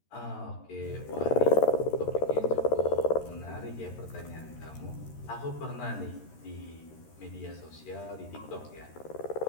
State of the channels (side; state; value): right; late; 13 ms